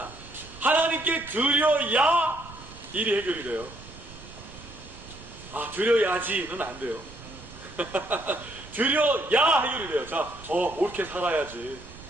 하나님께 드려야 일이 해결이 돼요. 아, 드려야지는 안 돼요. 드려야 해결이 돼요. 자, 옳게 살아야지.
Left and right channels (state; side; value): noise; right; rumble, 17 dB below the sound